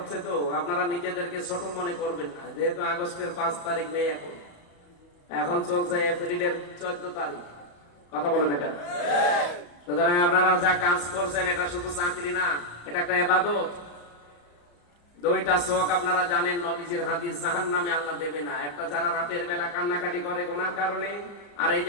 তো, আপনারা নিজেদেরকে ছোট মনে করবেন না। যেহেতু আগস্টের 5 তারিখ নেই, এখন চলছে এপ্রিলের 14 তারিখ। কথা বলে না কেন? সুতরাং আপনারা যা কাজ করছেন এটা শুধু চাকরি না, এটা একটা ইবাদত। 2টা চোখ আপনারা জানেন, নবীজির হাদিস, জাহান্নামে আল্লাহ দেবে না। একটা যারা রাতের বেলা কান্নাকাটি করে গুনার কারণে, আর এই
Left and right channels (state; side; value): late; right; 34 ms